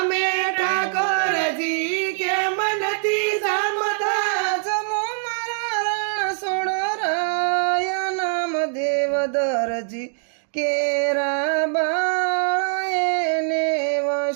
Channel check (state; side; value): silent; left; digital silence